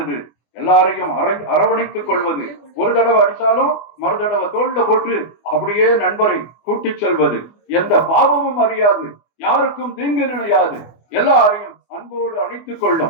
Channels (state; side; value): late; right; 24 ms